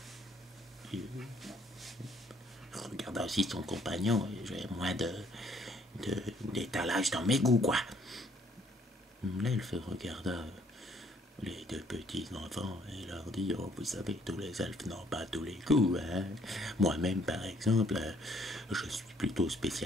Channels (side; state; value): both; normal; correlation 0.64